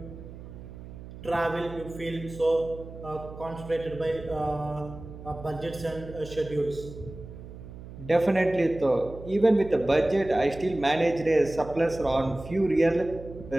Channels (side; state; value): right; noise; hum, 14 dB below the sound